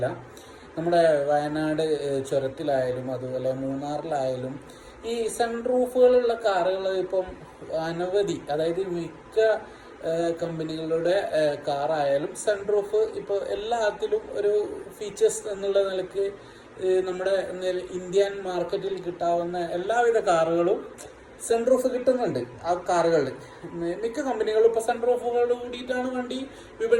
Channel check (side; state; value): both; identical; correlation 1.00